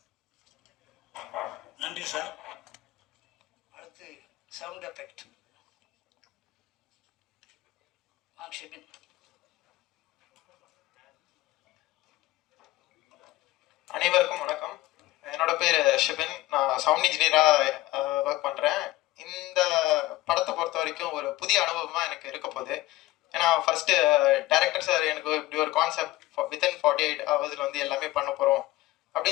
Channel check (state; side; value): quieter; right; 17.5 dB